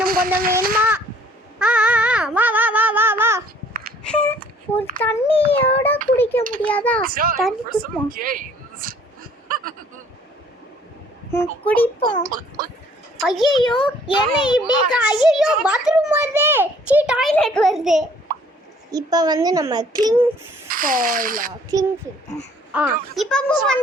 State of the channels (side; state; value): both; normal; correlation 0.57